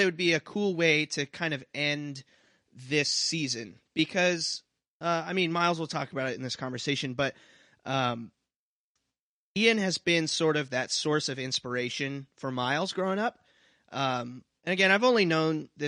it would be a cool way to kind of end this season because, Myles will talk about it in this conversation, but, Ian has been sort of that source of inspiration for Myles growing up. And again, I've only known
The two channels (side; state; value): both; identical; correlation 1.00